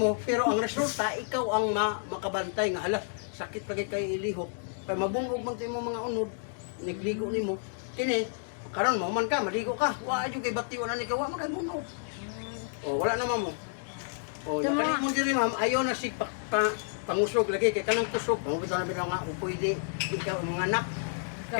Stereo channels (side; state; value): right; silent; digital silence